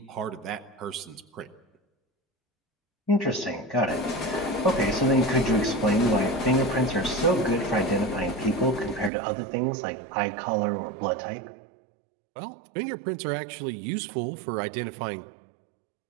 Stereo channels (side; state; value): left; drops out; at 9.1 s